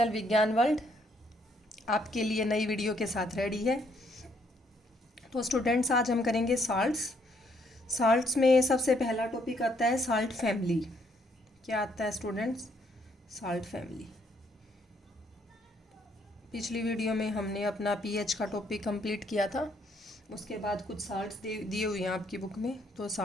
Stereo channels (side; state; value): both; normal; correlation 0.70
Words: विज्ञान world आपके लिए नई वीडियो के साथ रेडी है। तो स्टूडेंट्स, आज हम करेंगे साल्ट्स में सबसे पहला टॉपिक आता है साल्ट फैमिली। क्या आता है स्टूडेंट्स? Salt family. पिछली वीडियो में हमने अपना पीएच का टॉपिक कंप्लीट किया था। उसके बाद कुछ साल्ट्स दिए हुए हैं आपकी बुक में, तो